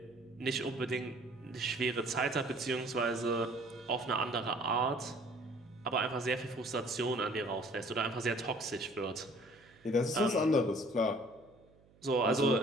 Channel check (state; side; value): noise; right; hum, 29 dB below the sound